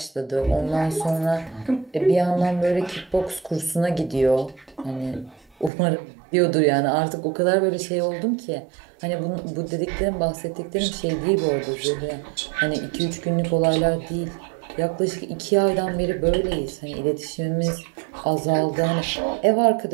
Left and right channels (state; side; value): drops out; left; at 5.7 s